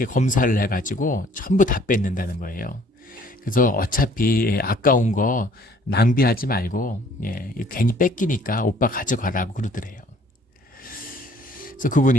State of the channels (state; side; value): normal; both; correlation 0.58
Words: 검사를 해가지고 전부 다 뺏는다는 거예요. 그래서 어차피 아까운 거 낭비하지 말고 괜히 뺏기니까 오빠 가져가라고 그러더래요. 그래서